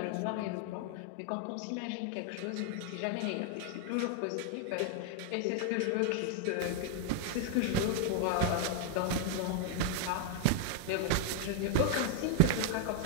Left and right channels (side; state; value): both; different; correlation 0.00